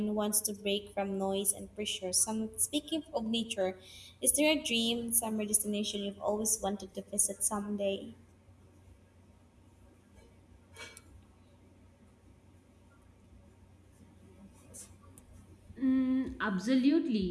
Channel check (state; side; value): identical; both; correlation 1.00